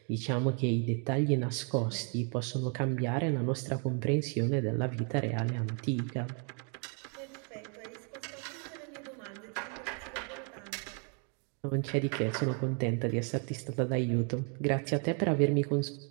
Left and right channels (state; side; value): quieter; left; 39.3 dB